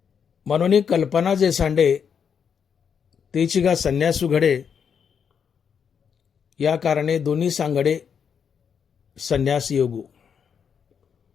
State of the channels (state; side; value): quieter; right; 7.2 dB